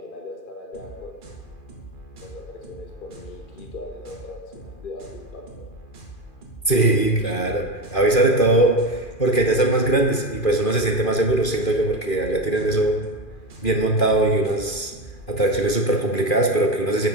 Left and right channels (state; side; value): late; right; 2.4 ms